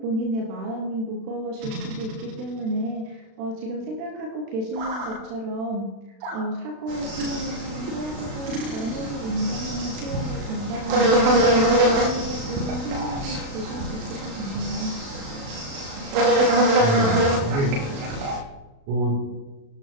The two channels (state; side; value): late; left; 36 ms